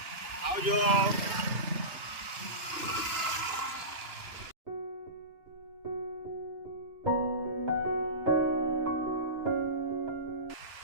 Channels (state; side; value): late; left; 2.9 ms